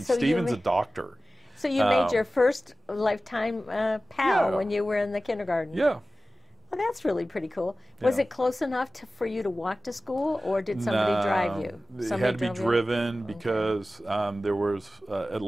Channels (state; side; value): normal; both; correlation 0.96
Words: Stephen's a doctor. So you made your first lifetime pal when you were in the kindergarten. Yeah. Well, that's really pretty cool. Was it close enough for you to walk to school, or did somebody drive you? It had to be driven, because there was at